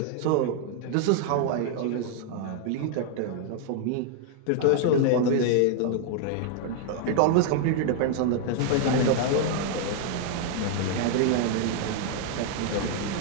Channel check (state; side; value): different; both; correlation 0.00